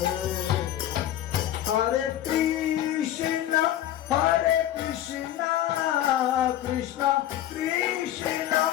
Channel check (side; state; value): right; quieter; 12.3 dB